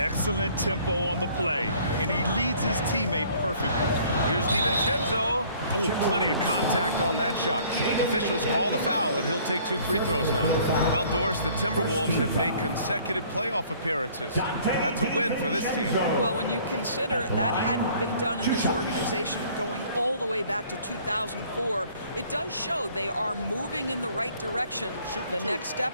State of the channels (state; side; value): inverted; both; correlation -0.56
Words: tempo on the play, and he leads his teammate perfectly. Here's DiVincenzo. Oh, plenty of contact on that shot. Officials call the foul, and he'll take 2 free throws now. Well, Doris, the Timberwolves have made consecutive playoff appearances. That's a win for this team. Well, when you consider that hadn't been done in this organization going all the way back to 2004, it does show they are moving in the right direction. The next